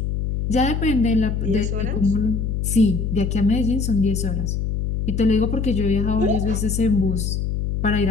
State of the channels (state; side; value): noise; left; hum, 1 dB below the sound